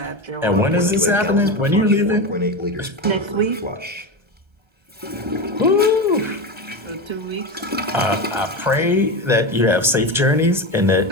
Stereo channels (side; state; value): left; late; 1.3 ms